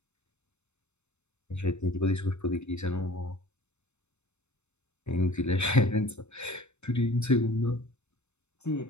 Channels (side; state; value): right; late; 0.82 ms